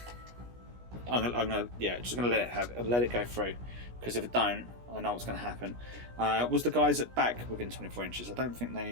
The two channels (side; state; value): left; late; 17 ms